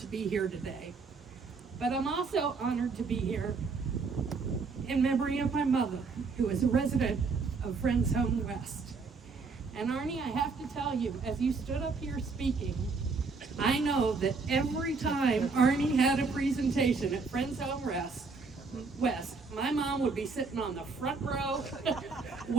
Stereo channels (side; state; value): left; quieter; 4.5 dB